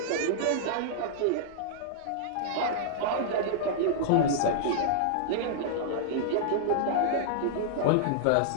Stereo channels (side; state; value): both; different; correlation -0.02